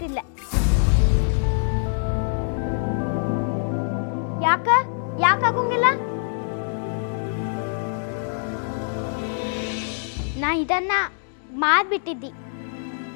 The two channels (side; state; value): right; silent; digital silence